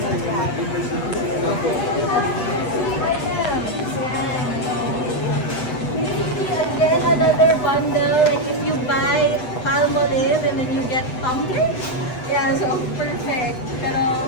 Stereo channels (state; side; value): late; right; 8.0 ms